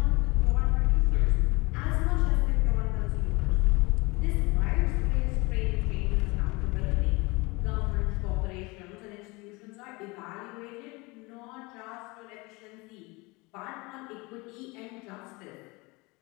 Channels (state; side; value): quieter; right; 25.2 dB